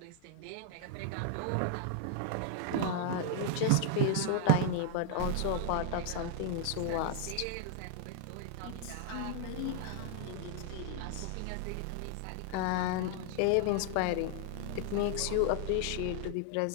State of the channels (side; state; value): both; different; correlation 0.00